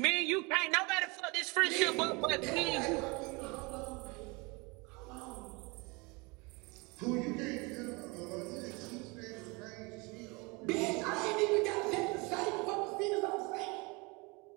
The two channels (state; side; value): quieter; left; 27.4 dB